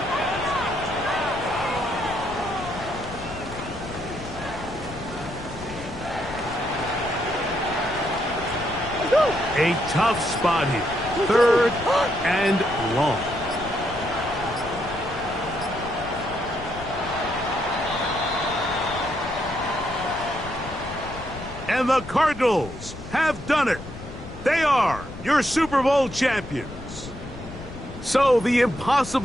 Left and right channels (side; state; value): left; noise; rumble, 13 dB below the sound